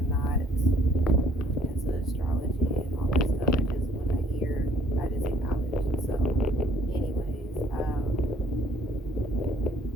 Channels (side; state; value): both; normal; correlation 0.62